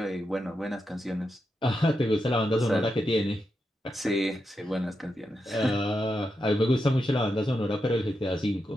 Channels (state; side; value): normal; both; correlation 0.86